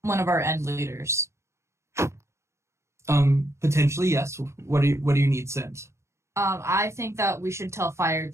one of our end leaders? Potentially, yes. What do you need sent? I think that we should tell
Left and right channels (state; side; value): late; left; 0.13 ms